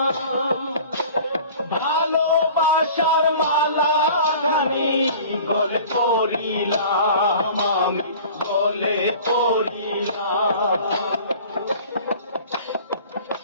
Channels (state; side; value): inverted; both; correlation -0.44